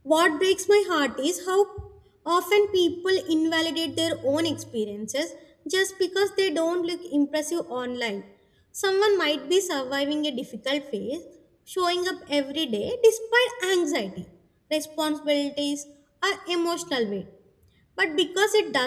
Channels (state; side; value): identical; both; correlation 1.00